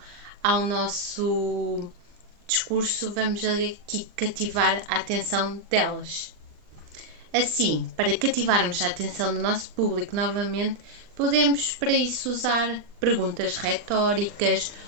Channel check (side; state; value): left; late; 39 ms